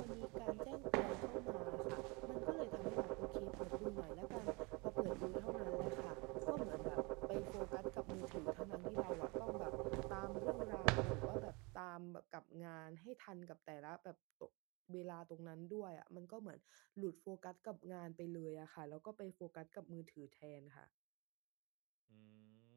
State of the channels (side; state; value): left; quieter; 28.2 dB